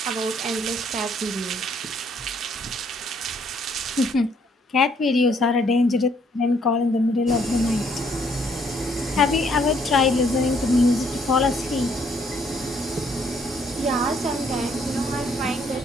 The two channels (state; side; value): normal; both; correlation 0.67